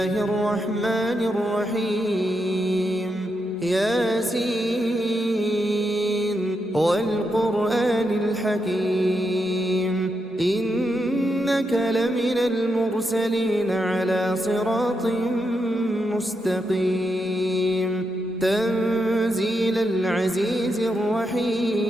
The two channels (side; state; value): both; normal; correlation 0.83